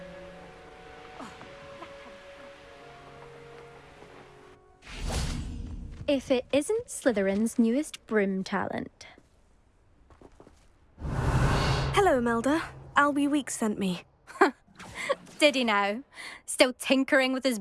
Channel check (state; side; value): identical; both; correlation 1.00